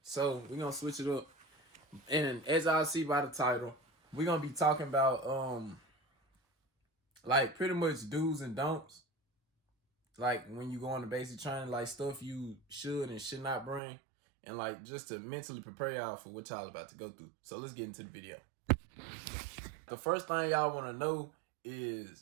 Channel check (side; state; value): left; drops out; at 13.8 s